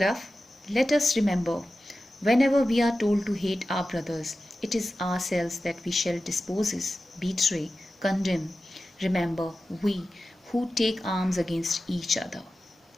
Let us remember, whenever we are told to hate our brothers, it is ourselves that we shall dispose, betray, condemn. Remember, we who take arms against each other.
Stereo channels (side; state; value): both; normal; correlation 0.94